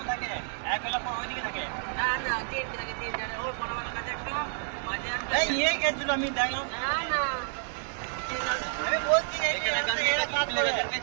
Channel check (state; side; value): silent; left; digital silence